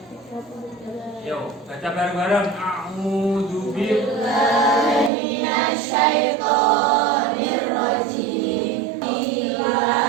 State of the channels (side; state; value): left; drops out; at 5.1 s